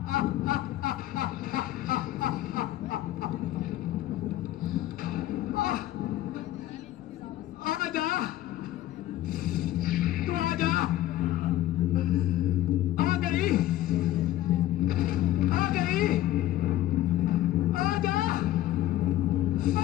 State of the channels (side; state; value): right; quieter; 14.0 dB